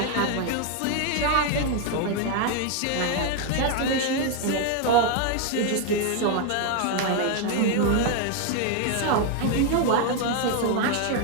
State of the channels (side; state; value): both; different; correlation 0.01